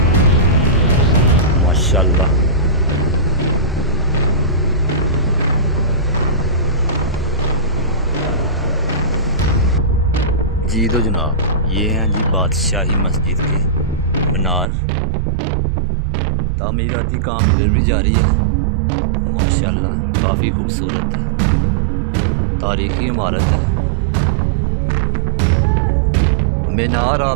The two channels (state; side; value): drops out; left; at 14.7 s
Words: माशाल्लाह जी। तो जनाब ये हैं जी बादशाही मस्जिद के मीनार। तामीराती काम इधर भी जारी है। माशाल्लाह काफ़ी खूबसूरत है। तारीखी इमारत है। मीनार